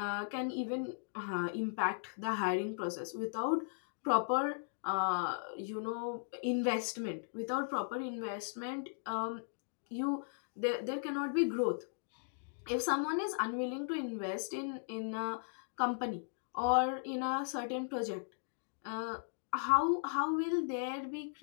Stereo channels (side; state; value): right; silent; digital silence